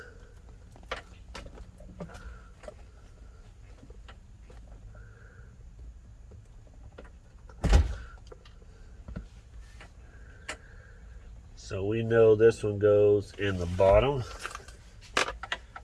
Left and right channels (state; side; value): identical; both; correlation 1.00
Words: So we know this one goes in the bottom,